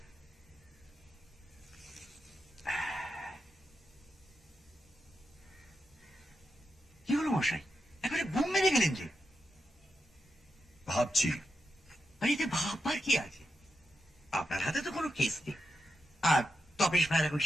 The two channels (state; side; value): normal; both; correlation 0.87